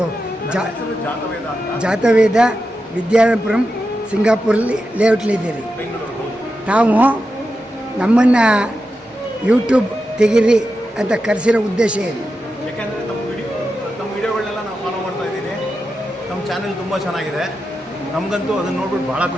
ಜಾತವೇದ, ವಿದ್ಯಾಪುರಂ, ಸಿಂಗಾಪುರಲ್ಲಿ ಲೇಔಟ್ಲಿದ್ದೀರಿ. ತಾವು ನಮ್ಮನ್ನು ಯೂಟ್ಯೂಬ್ ತೆಗೀರಿ ಅಂತ ಕರೆಸಿರೋ ಉದ್ದೇಶ ಏನು? ಯಾಕೆಂದರೆ ತಮ್ಮ ವಿಡಿಯೋಗಳನ್ನೆಲ್ಲ ನಾವು ಫಾಲೋ ಮಾಡ್ತಾ ಇದ್ದೀನಿ. ನಮ್ಮ ಚಾನೆಲ್ ತುಂಬ ಚೆನ್ನಾಗಿದೆ. ನಮಗಂತೂ ಅದನ್ನು ನೋಡ್ಬಿಟ್ಟು ಭಾಳ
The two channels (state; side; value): normal; both; correlation 0.89